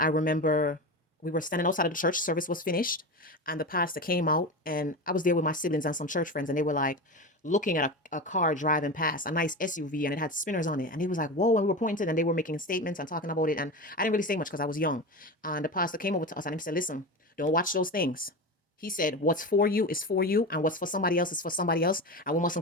remember we were standing outside of the church, service was finished, and the pastor came out, and I was there with my siblings and some church friends, and they were like looking at a car driving past, a nice SUV, and it had spinners on it. And he was like, whoa, and we were pointed, and they were making statements and talking about it. And I didn't really say much because I was young. And the pastor came over to us and he said, listen, don't watch those things. He said, what's for you is for you, and what's for somebody else is for somebody else, and we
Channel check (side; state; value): both; normal; correlation 0.24